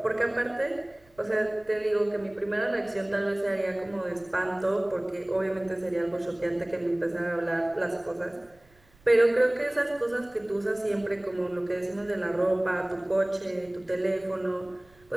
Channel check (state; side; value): noise; right; rumble, 30 dB below the sound